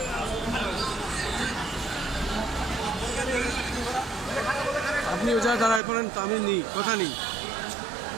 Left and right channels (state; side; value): drops out; left; at 5.8 s